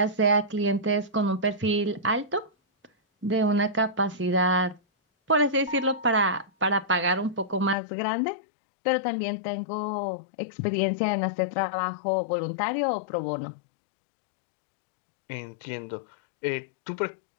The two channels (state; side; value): drops out; right; at 7.8 s